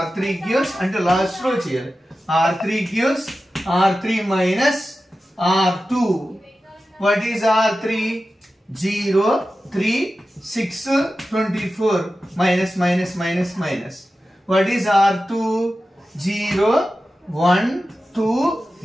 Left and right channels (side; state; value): both; normal; correlation 0.93